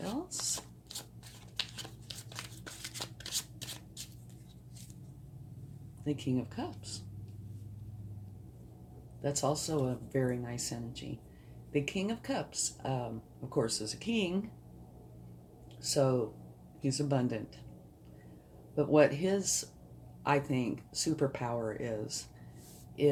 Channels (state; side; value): identical; both; correlation 1.00